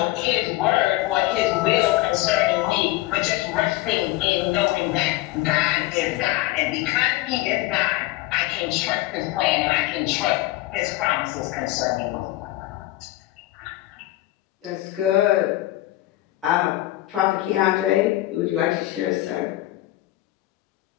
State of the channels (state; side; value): quieter; right; 17.1 dB